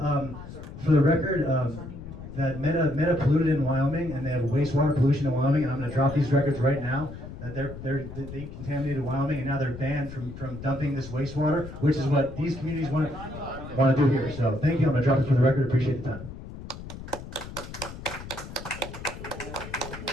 the record, that Meta polluted in Wyoming, and they have wastewater pollution in Wyoming. And I'm going to drop these records right now. That they contaminated Wyoming, and now they're banned from dumping this wastewater, which is what these communities want to do here. So thank you. I'm going to drop it for the record. Appreciate the time.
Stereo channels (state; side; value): noise; left; rumble, 12 dB below the sound